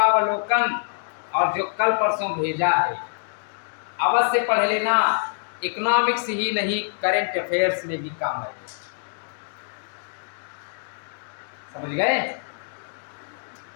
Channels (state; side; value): silent; right; digital silence